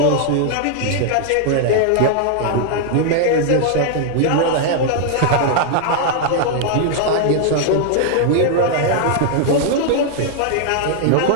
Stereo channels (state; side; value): different; both; correlation 0.00